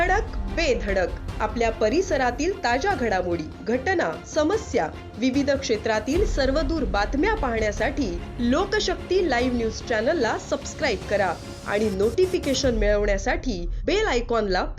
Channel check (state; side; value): identical; both; correlation 1.00